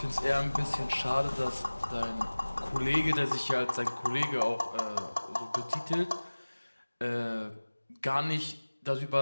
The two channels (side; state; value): both; inverted; correlation -1.00